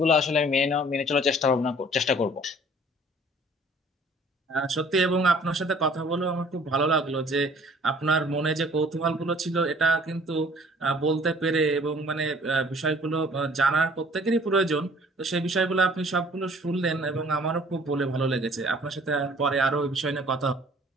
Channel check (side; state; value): both; normal; correlation 0.54